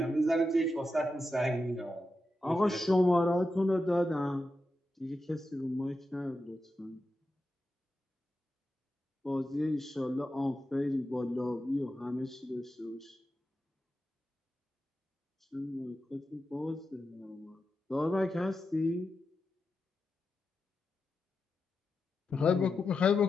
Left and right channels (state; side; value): normal; both; correlation 0.89